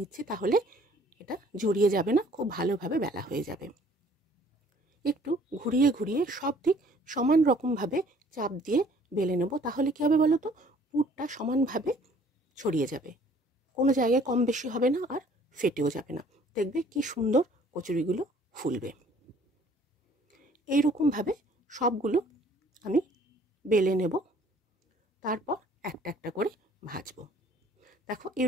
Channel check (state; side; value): normal; both; correlation 0.57